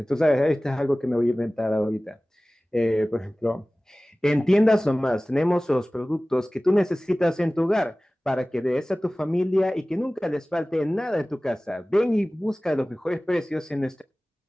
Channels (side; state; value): both; normal; correlation 0.98